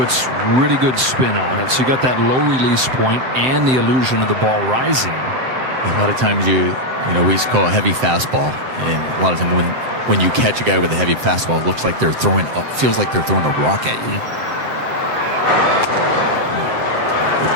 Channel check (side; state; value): left; late; 7.7 ms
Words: really good spin on it. So you got that low release point and the illusion of the ball rising. A lot of times we used to call a heavy fastball, and a lot of them when you catch a guy with a heavy fastball, it looks like they're throwing feels like they're throwing a rock at you. The